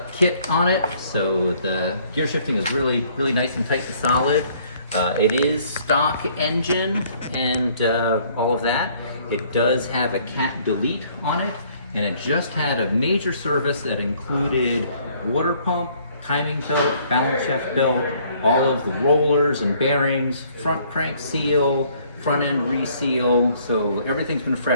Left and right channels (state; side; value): inverted; both; correlation -0.61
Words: kit on it, so the gear shifting is really nice and tight and solid. It is stock engine and all of that. It does have a cat delete on it, and it just had a major service that included water pump, timing belt, balance shaft belt, all of the rollers and bearings, front crank seal, front end reseal, so everything's been